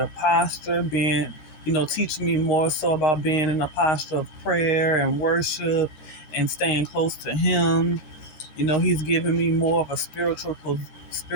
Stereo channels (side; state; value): right; late; 13 ms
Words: posture, teaching me more so about being in a posture of prayer and worship and staying close to Him. He's giving me more of a